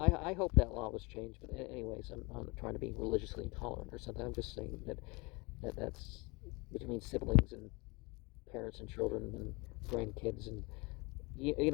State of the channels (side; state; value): right; quieter; 26.7 dB